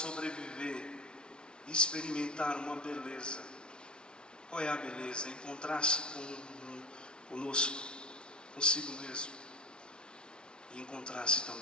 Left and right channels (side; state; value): right; late; 0.056 ms